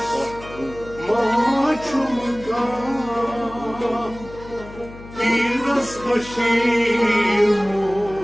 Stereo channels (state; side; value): noise; left; hum, 16 dB below the sound